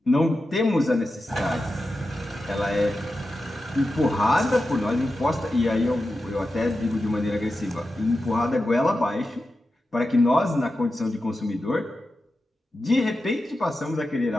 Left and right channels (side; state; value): both; normal; correlation 0.91